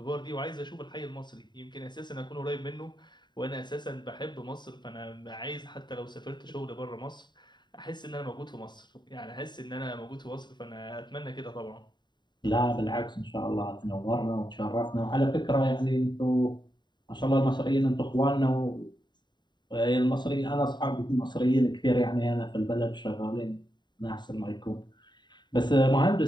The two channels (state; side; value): late; right; 0.22 ms